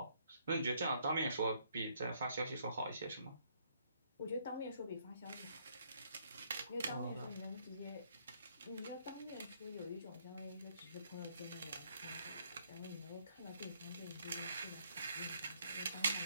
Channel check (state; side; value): inverted; both; correlation -0.68